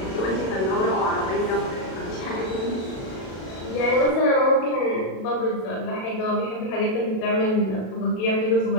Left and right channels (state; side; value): late; right; 37 ms